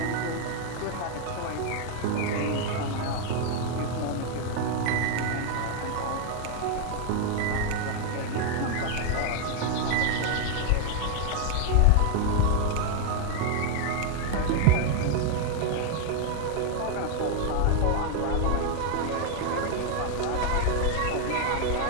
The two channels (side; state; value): both; different; correlation 0.00